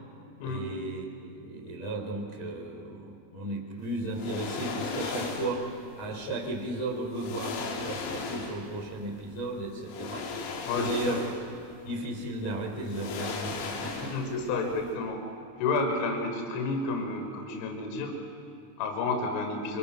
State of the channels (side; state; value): right; late; 29 ms